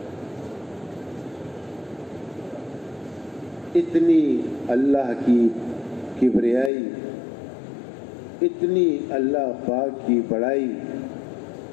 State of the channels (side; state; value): right; drops out; at 6.7 s